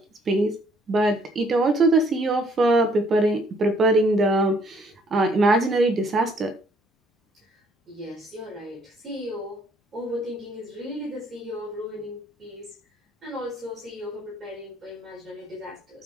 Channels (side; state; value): both; normal; correlation 0.64